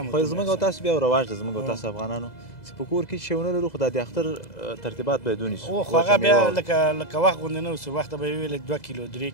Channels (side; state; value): right; late; 2.0 ms